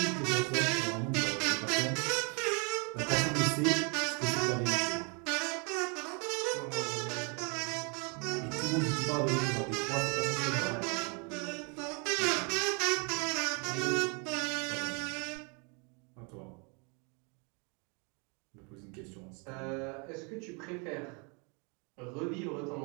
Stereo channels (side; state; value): left; quieter; 34.1 dB